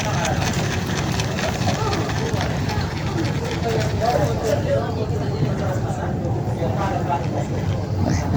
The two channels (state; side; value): identical; both; correlation 1.00